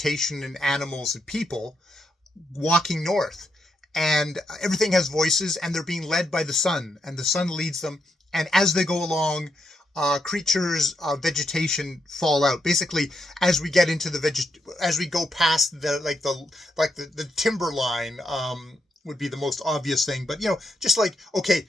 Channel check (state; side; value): normal; both; correlation 0.81